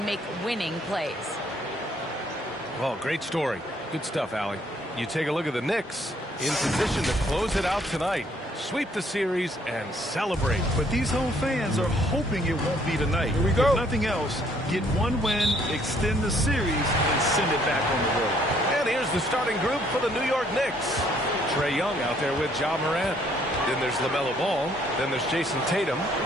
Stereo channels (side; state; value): both; normal; correlation 0.65